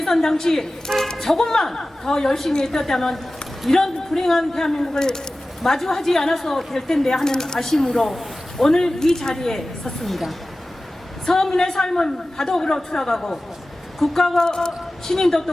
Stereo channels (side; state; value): both; normal; correlation 0.96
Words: 당시 조금만 더 열심히 했다면 이런 불행한 대한민국을 마주하지 않아서 될 텐데 하는 아쉬움으로 오늘 이 자리에 섰습니다. 서민의 삶은 바닥으로 추락하고 국가와 시민도